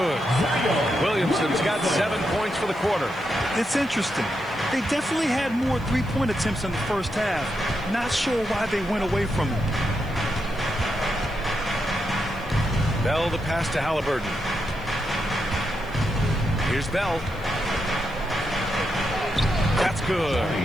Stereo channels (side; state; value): right; noise; hiss, 27 dB below the sound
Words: Williamson's got 7 points for the quarter. It's interesting. They definitely had more three-point attempts in the first half. Not sure why they went away from it. Bell the pass to Halliburton. Here's Bell. That's good.